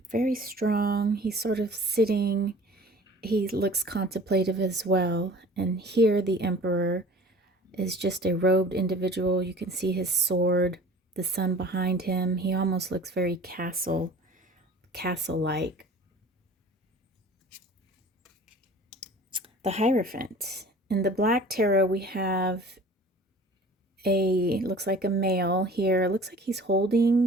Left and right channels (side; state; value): both; normal; correlation 0.45